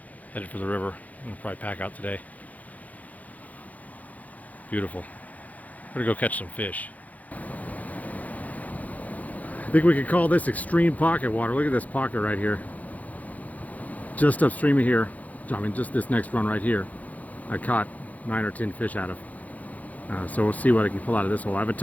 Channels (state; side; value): late; right; 0.076 ms